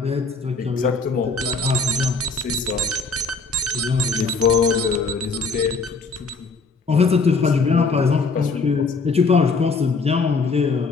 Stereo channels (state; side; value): quieter; right; 4.2 dB